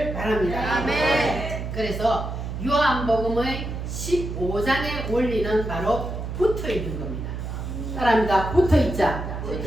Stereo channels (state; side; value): noise; right; hum, 6 dB below the sound